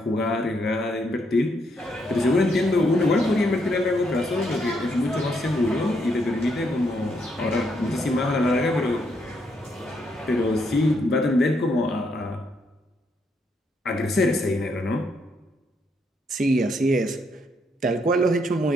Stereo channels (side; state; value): both; normal; correlation 0.75